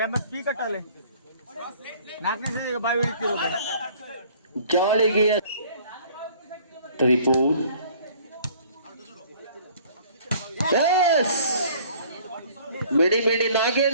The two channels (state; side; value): inverted; both; correlation -0.54